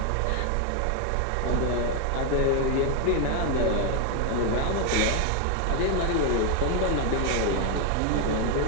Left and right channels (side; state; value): both; different; correlation 0.01